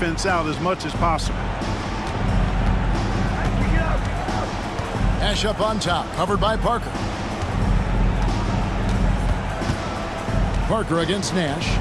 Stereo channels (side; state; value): both; identical; correlation 1.00